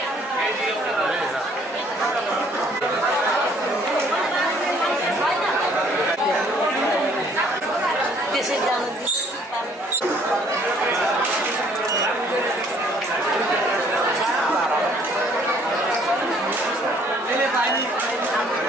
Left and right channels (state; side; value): normal; both; correlation 0.61